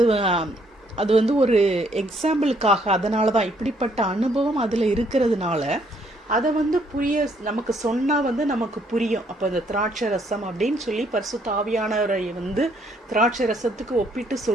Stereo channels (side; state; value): both; normal; correlation 0.68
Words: அது வந்து ஒரு எக்ஸாம்பிளுக்காக, அதனால தான் இப்படிப்பட்ட அனுபவம் அதில் இருக்கிறதுனால அதை வந்து நமக்கு சொன்னால் வந்து நமக்கு புரியும். அப்போ இந்த திராட்சை ரசம் அப்படின்னு சொல்லி பரிசுத்த ஆவியானவரை வந்து திராட்சை ரசத்துக்கு ஒப்பிட்டு